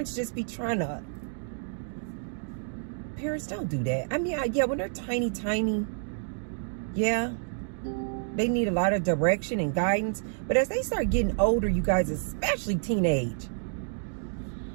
just be trying to. Parents don't do that. I mean, yeah, when they're tiny, yeah, they need a lot of direction and guidance. But as they start getting older, you guys, especially teenage,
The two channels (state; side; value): silent; left; digital silence